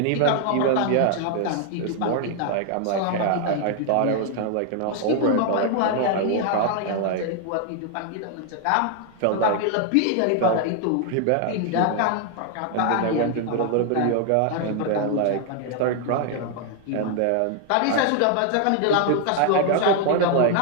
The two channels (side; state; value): both; different; correlation 0.00